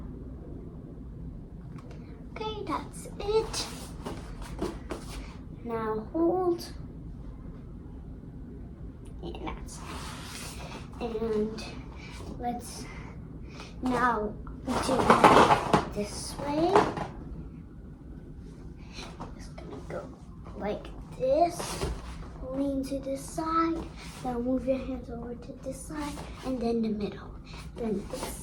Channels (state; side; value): identical; both; correlation 1.00